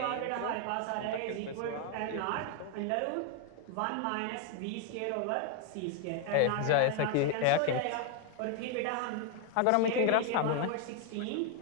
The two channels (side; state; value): both; different; correlation 0.01